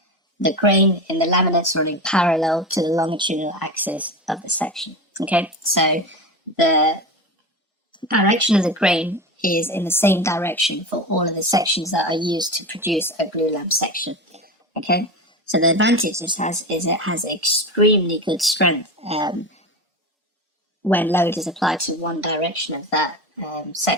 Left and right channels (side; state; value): both; normal; correlation 0.24